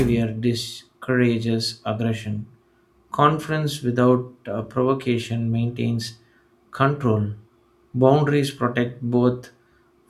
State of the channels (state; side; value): identical; both; correlation 1.00